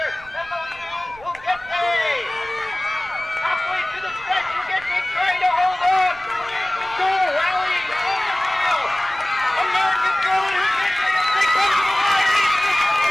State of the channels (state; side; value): noise; right; rumble, 23 dB below the sound